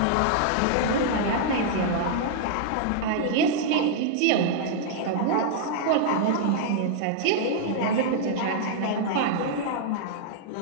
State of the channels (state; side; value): different; both; correlation -0.01